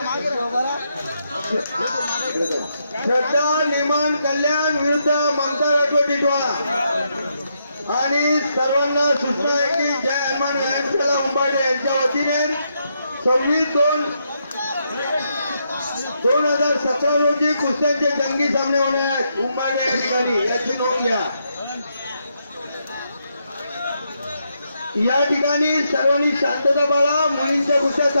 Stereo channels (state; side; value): inverted; both; correlation -0.79